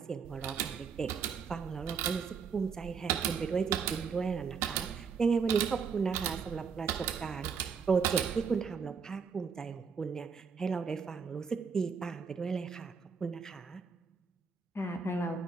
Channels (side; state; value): left; quieter; 5.8 dB